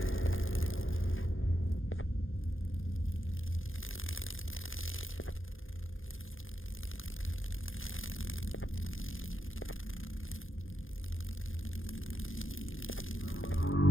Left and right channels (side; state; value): right; late; 0.59 ms